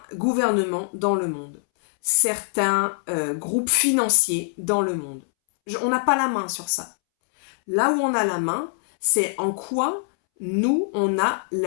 gouvernements dans le monde, certains groupes financiers dans le monde. On n'a pas la main sur ça. Là où on a la main, c'est en quoi nous, on a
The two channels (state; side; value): silent; right; 63 dB below the other